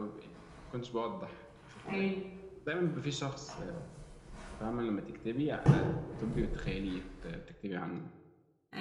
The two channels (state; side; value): identical; both; correlation 1.00